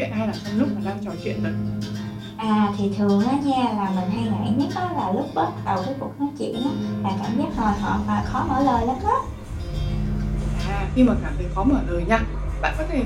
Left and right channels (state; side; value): identical; both; correlation 1.00